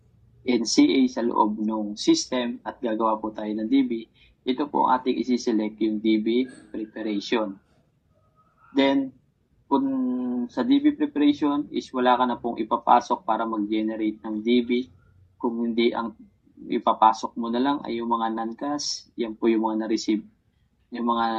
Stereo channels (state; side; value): identical; both; correlation 1.00